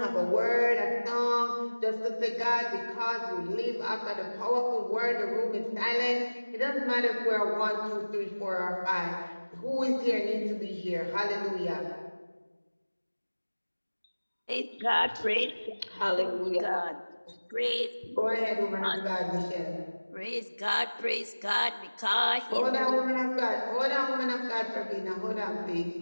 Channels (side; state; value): both; inverted; correlation -1.00